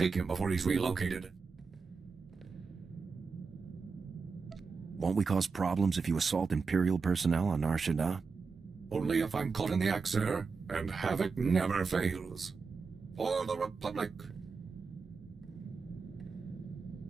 him before he's relocated. Won't we cause problems if you assault Imperial personnel on Nar Shaddaa? Only if I'm caught in the act, sir, and Havoc never fails. For the Republic!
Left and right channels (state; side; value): quieter; left; 4.9 dB